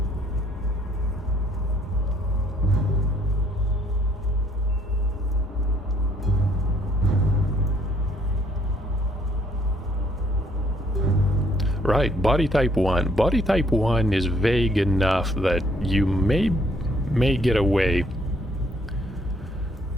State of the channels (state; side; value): normal; both; correlation 0.66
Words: Right, body type 1. Body type 1 is vague enough that you may get away